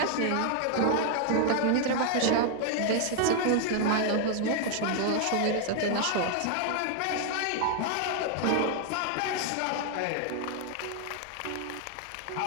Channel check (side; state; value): both; different; correlation 0.00